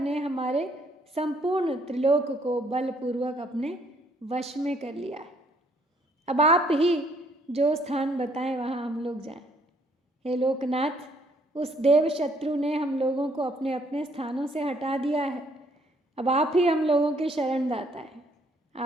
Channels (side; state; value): both; normal; correlation 0.66